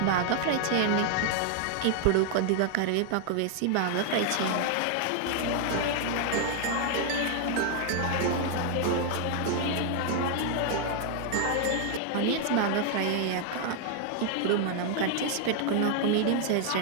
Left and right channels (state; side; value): different; both; correlation 0.00